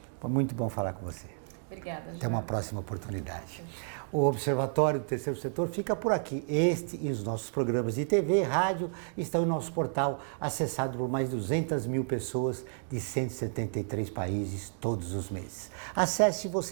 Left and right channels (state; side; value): silent; left; 57 dB below the other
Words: Foi muito bom falar com você. Obrigada, Joel. Até uma próxima oportunidade. Okay. O Observatório do Terceiro Setor fica por aqui. Este e os nossos programas de TV e rádio estão em nosso portal, acessado por mais de 200 mil pessoas de 173 países todos os meses. Acesse